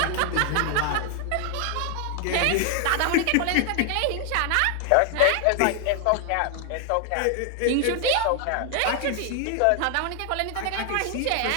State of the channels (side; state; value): both; different; correlation 0.00